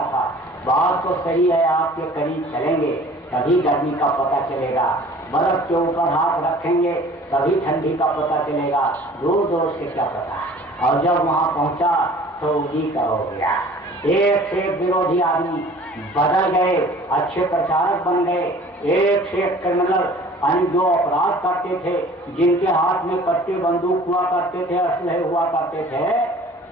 था बात तो सही है, आपके करीब चलेंगे तभी गर्मी का पता चलेगा, बर्फ के ऊपर हाथ रखेंगे तभी ठंडी का पता चलेगा, दूर दूर से क्या पता। और जब वहाँ पहुँचा तो उन्हीं का हो गया। एक से एक विरोधी आदमी बदल गए, अच्छे प्रचारक बन गए। एक से एक क्रिमिनल जो अपराध करते थे, जिनके हाथ में कट्टे बंदूक हुआ करते थे, असलहे हुआ करते थे,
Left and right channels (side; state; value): both; normal; correlation 0.48